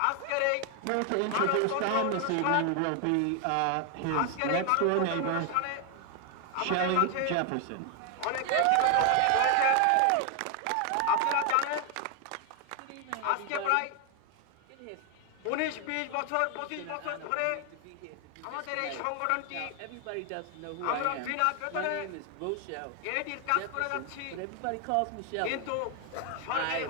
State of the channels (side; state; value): both; different; correlation 0.01